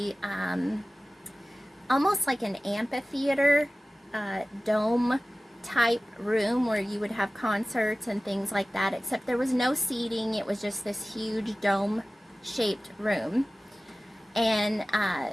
almost like an amphitheater, dome type room where you would have concerts and things like that, except there was no seating. It was just this huge dome shaped room. And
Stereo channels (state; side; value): normal; both; correlation 0.97